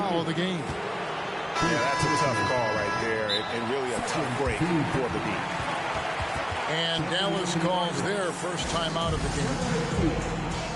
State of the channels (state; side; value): identical; both; correlation 1.00